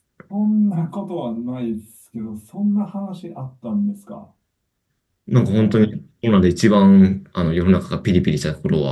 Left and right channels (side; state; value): both; identical; correlation 1.00